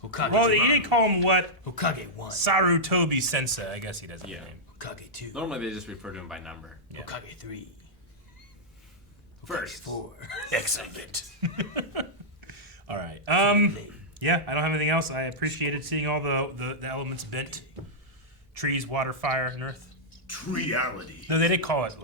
Hokage. Well, you didn't call him what? Hokage 1. Sarutobi Sensei. I guess he doesn't have Yeah. a name. Hokage 2. Normally they just refer to him by number. Yeah. Hokage 3. First. 4. Excellent. All right. Yeah, I don't have anything else. I appreciated seeing all the elements bent. Trees, water, fire, and earth. Reality. No, they did call it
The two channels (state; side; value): normal; both; correlation -0.09